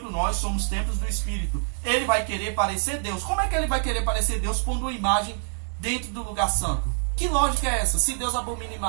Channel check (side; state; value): left; silent; 61 dB below the other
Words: nós somos templos do Espírito. Ele vai querer parecer Deus. Como é que ele vai querer parecer Deus pondo uma imagem dentro do lugar santo? Que lógica é essa? Se Deus abomina